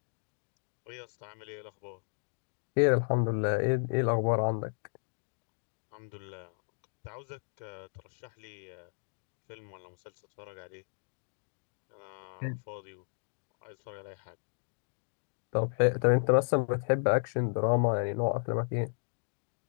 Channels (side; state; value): right; silent; digital silence